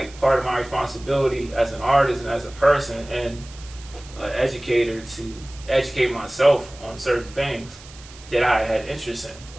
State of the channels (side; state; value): right; noise; hiss, 20 dB below the sound